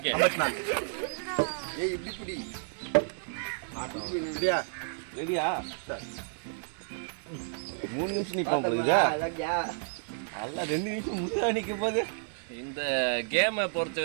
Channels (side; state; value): left; silent; digital silence